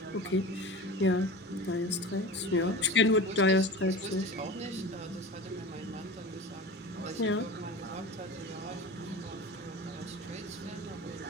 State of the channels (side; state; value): both; normal; correlation 0.32